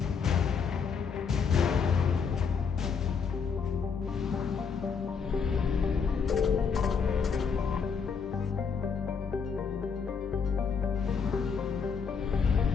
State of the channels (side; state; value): right; quieter; 5.9 dB